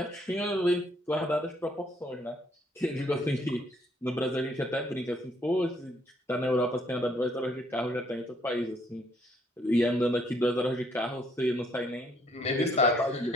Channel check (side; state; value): both; normal; correlation 0.67